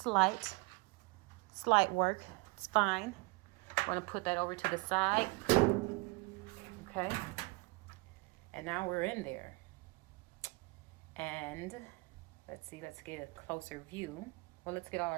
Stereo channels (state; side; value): quieter; left; 27.2 dB